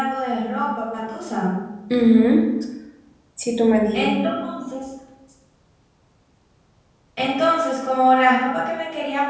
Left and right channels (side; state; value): both; identical; correlation 1.00